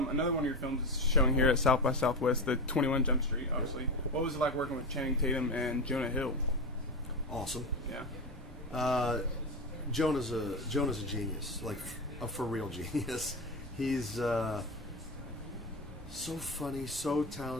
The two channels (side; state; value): both; normal; correlation 0.19